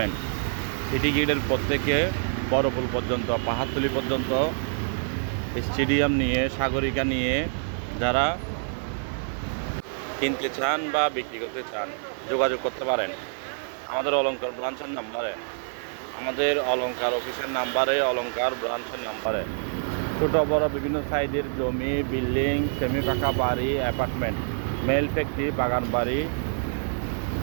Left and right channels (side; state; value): left; silent; digital silence